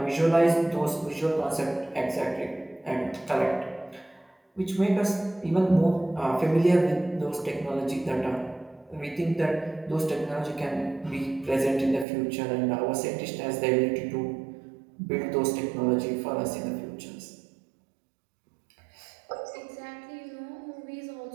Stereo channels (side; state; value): left; drops out; at 12.1 s